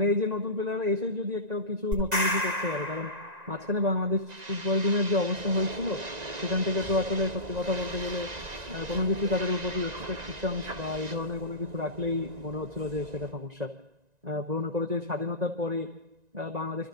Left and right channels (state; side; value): late; left; 1.9 ms